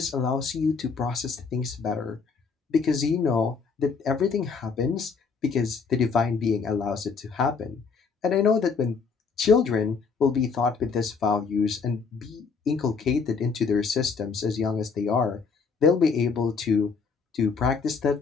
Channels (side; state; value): right; quieter; 5.2 dB